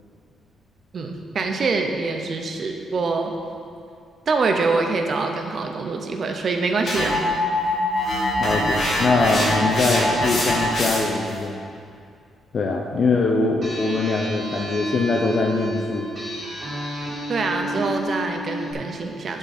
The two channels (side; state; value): both; normal; correlation 0.76